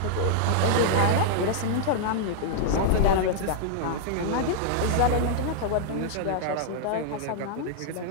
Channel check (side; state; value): both; different; correlation -0.01